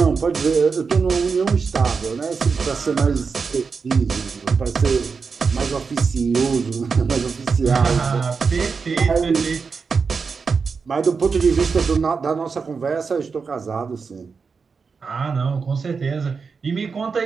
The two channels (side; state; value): left; quieter; 5.2 dB